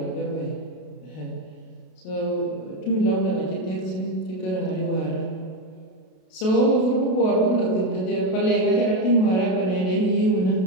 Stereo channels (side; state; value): right; late; 32 ms